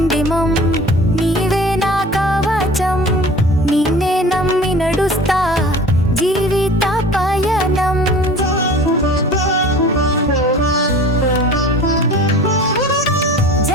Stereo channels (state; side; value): normal; both; correlation 0.42